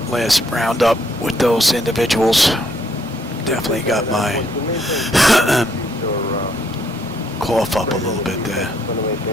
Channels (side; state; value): both; normal; correlation 0.70